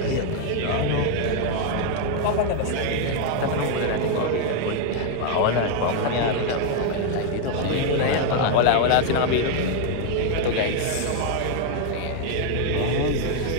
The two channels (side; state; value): both; different; correlation 0.01